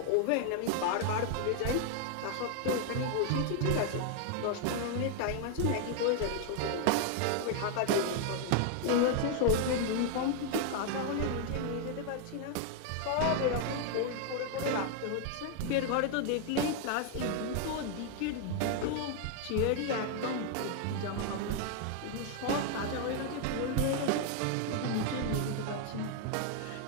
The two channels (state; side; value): different; both; correlation 0.00